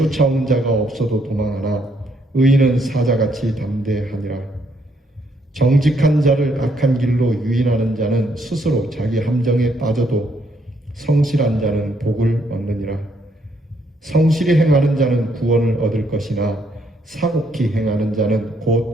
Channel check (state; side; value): normal; both; correlation 0.72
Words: 자가 없어도 도망하나 의인은 사자같이 담대하니라. 정직한 자를 악한 길로 유인하는 자는 스스로 자기 함정에 빠져도 성실한 자는 복을 얻느니라. 성실히 행하는 자는 구원을 얻을 것이나 사곡히 행하는 자는